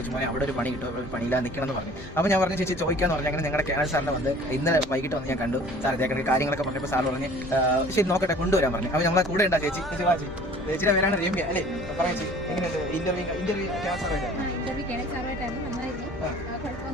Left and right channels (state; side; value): normal; both; correlation 0.49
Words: വെച്ച് അവിടെ ഒരു പണി കിട്ടും, ഒരു പണിയില്ല നിൽക്കണം എന്ന് പറഞ്ഞു. അപ്പോൾ ഞാൻ പറഞ്ഞു ചേച്ചി ചോദിക്കാന്ന് പറഞ്ഞു. അങ്ങനെ ഞങ്ങളുടെ കേരള സാറിനെ വന്ന് ഇന്നലെ വൈകിട്ട് വന്ന് ഞാൻ കണ്ടു. സാർ ഇതേക്കണ കാര്യങ്ങളൊക്കെ പറഞ്ഞപ്പോൾ സാർ പറഞ്ഞ് ശരി നോക്കട്ടെ കൊണ്ടുവരാൻ പറഞ്ഞു. അപ്പോൾ നമ്മളെ കൂടെ ഉണ്ടാ ചേച്ചി. ചേച്ചിയുടെ പേരാണ് രമ്യ അല്ലേ? പറയാം ചേച്ചി, എങ്ങനെയുണ്ട് ഇന്റർവ്യൂ